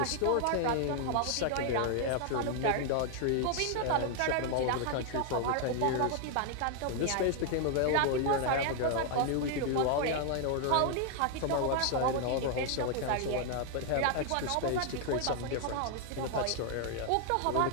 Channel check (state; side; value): different; both; correlation 0.00